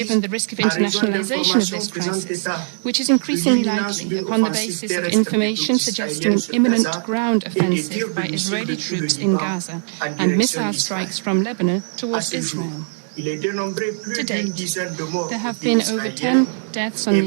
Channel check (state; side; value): silent; left; digital silence